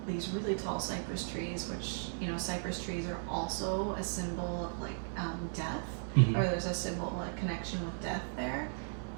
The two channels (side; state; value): left; silent; 54 dB below the other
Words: these really tall cypress trees, which, you know, cypress trees are also a symbol of like death, or there's a symbol, a connection with death there.